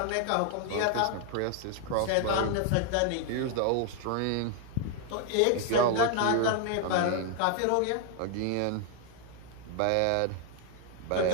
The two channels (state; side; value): different; both; correlation 0.00